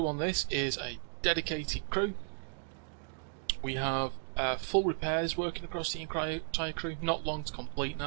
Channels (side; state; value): left; silent; digital silence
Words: on this is a dedicated crew. We have full repairs working across the entire crew, not long to complete